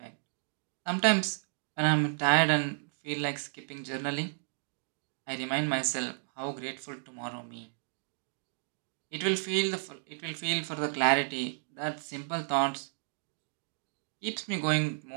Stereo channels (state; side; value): silent; left; digital silence